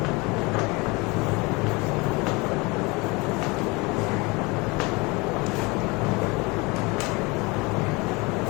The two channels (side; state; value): right; quieter; 25.8 dB